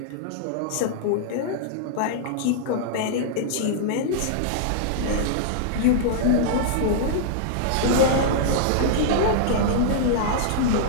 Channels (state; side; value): different; both; correlation -0.01